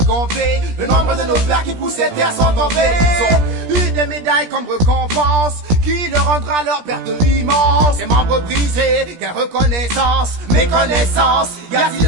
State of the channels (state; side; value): late; left; 17 ms